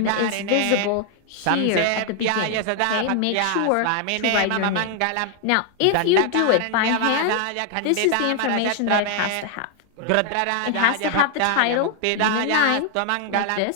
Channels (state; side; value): different; both; correlation 0.00